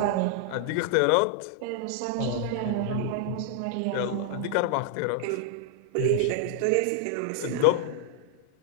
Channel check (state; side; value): different; both; correlation -0.01